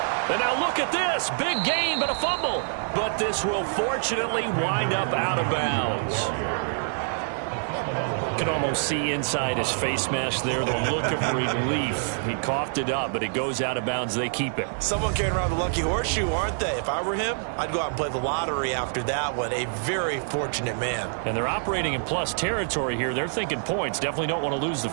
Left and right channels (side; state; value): left; silent; 59 dB below the other